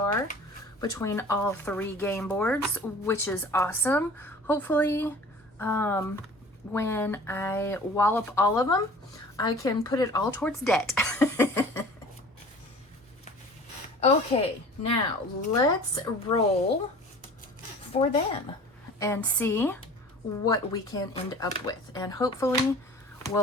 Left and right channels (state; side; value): normal; both; correlation 0.44